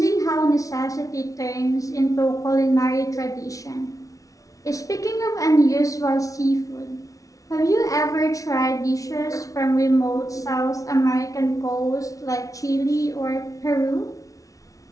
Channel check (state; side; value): late; right; 0.17 ms